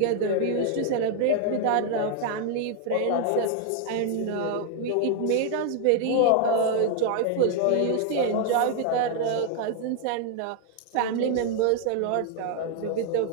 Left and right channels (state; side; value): different; both; correlation 0.00